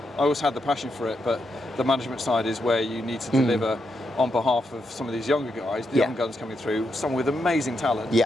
I always had the passion for it, but the management side is where you need to deliver on behalf of some of these younger guys, the young guns coming through, some with amazing talent.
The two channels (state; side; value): normal; both; correlation 0.82